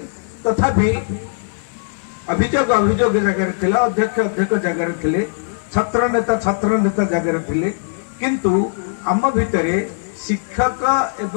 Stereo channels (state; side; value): silent; right; 58 dB below the other